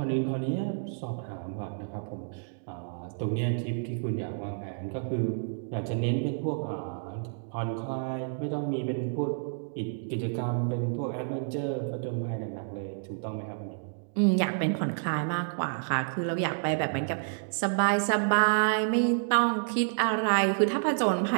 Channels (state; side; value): silent; left; digital silence